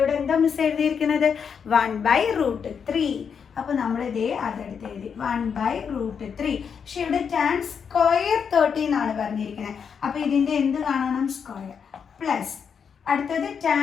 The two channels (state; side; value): quieter; right; 6.8 dB